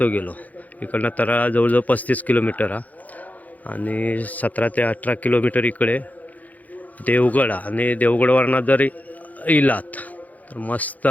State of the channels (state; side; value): late; right; 0.078 ms